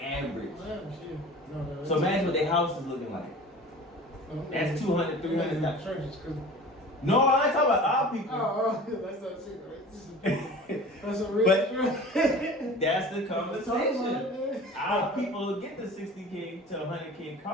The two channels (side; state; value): both; normal; correlation 0.40